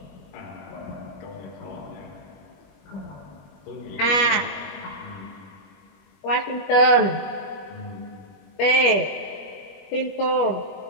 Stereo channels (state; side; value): late; right; 21 ms